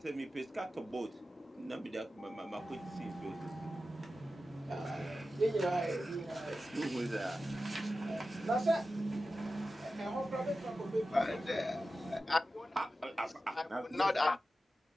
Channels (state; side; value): normal; both; correlation 0.93